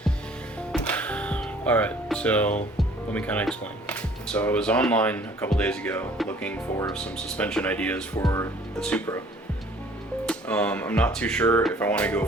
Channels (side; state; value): both; normal; correlation 0.54